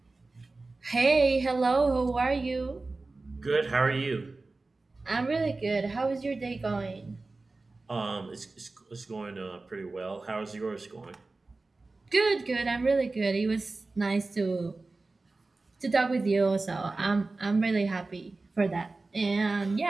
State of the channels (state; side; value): quieter; left; 3.5 dB